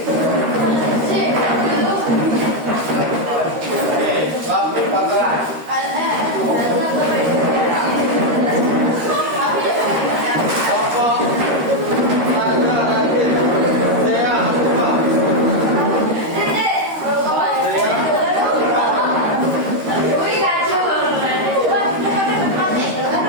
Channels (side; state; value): left; late; 13 ms